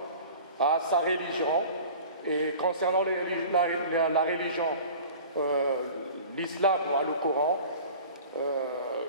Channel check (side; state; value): both; inverted; correlation -0.41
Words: a sa religion. Et concernant la religion, l'islam a le Coran,